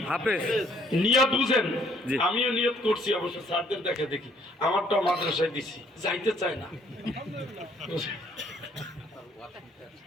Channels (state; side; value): normal; both; correlation 0.64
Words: হাফেজ। নিয়ত বুঝেন। জি। আমিও নিয়ত করছি অবশ্য, স্যারদের দেখে দেখি। আমারটা মাদ্রাসায় দিছি, যাইতে চায় না।